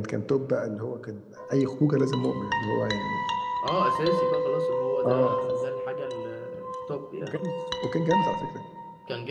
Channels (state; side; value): identical; both; correlation 1.00